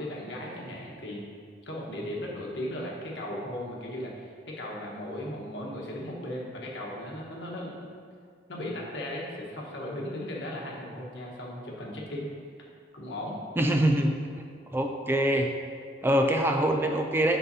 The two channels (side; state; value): both; normal; correlation 0.66